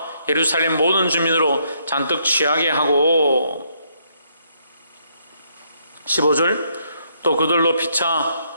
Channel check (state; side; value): inverted; both; correlation -0.72